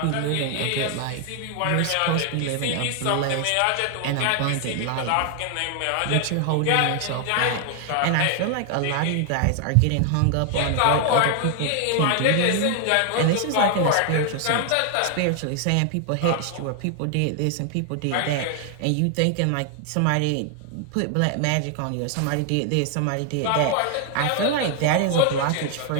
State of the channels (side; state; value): both; different; correlation 0.00